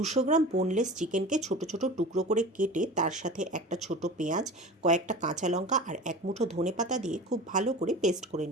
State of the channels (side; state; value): both; normal; correlation 0.35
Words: গ্রাম বোনলেস চিকেনকে ছোট ছোট টুকরো করে কেটে তার সাথে একটা ছোট পেঁয়াজ, কয়েকটা কাঁচা লঙ্কা আর এক মুঠো ধনেপাতা দিয়ে খুব ভালো করে পেস্ট করে